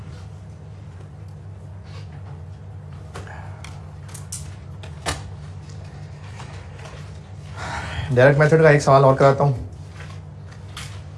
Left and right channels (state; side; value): identical; both; correlation 1.00